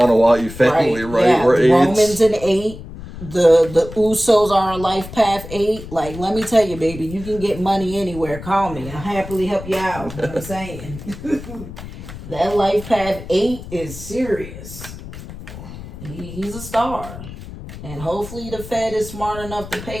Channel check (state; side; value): noise; left; rumble, 13 dB below the sound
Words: family, right? Yeah, We're the Romans in 8. The Usos are on life path 8. Like, let me tell you, baby, you can get money anywhere. Call me. I'll happily help you out. You know what I'm saying? That life path 8 is serious. He's a star. And hopefully the Fed is smart enough to